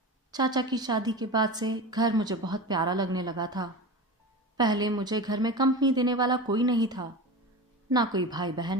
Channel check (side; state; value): both; normal; correlation 0.29